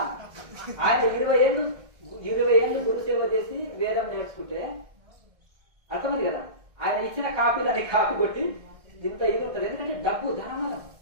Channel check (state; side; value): late; left; 1.6 ms